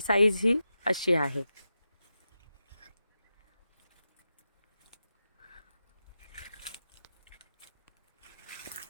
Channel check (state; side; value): inverted; both; correlation -0.90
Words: साईज ही अशी आहे।